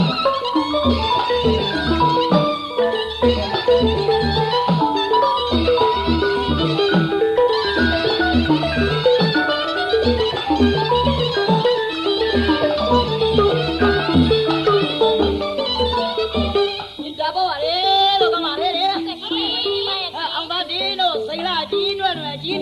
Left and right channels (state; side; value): identical; both; correlation 1.00